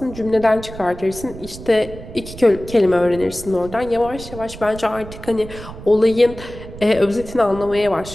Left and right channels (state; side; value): noise; right; rumble, 14 dB below the sound